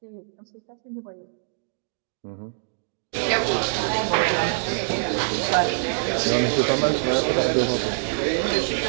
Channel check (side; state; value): left; silent; digital silence